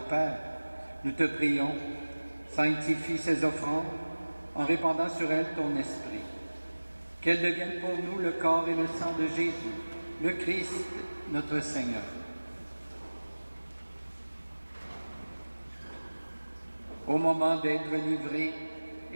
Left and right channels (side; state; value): both; inverted; correlation -1.00